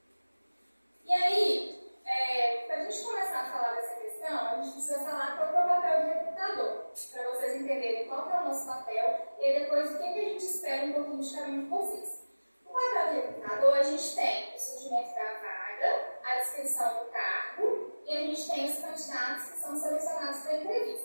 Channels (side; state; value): both; inverted; correlation -1.00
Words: E aí, para a gente começar a falar dessa questão, a gente precisa falar qual é o papel do recrutador, para vocês entenderem qual é o nosso papel e aí depois o que a gente espera um pouquinho de cada um de vocês. O papel do recrutador, a gente tem o surgimento da vaga, a descrição do cargo e a gente tem os candidatos que são selecionados para a